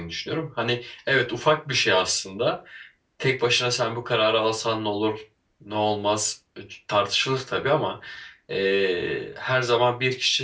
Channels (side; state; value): both; identical; correlation 1.00